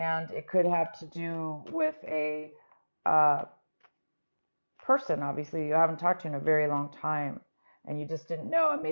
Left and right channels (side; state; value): both; inverted; correlation -1.00